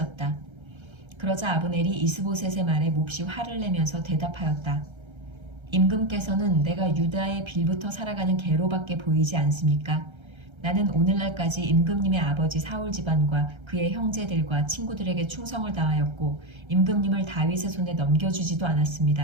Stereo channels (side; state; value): left; late; 1.3 ms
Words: 그러자 아브넬이 이스보셋의 말에 몹시 화를 내면서 대답하였다. 임금께서는 내가 유다의 빌부터 살아가는 개로밖에 보이지 않습니까? 나는 오늘날까지 임금님의 아버지 사울 집안과 그의 형제들과 친구들에게 충성을 다하였고 임금님을 다윗의 손에 넘겨주지도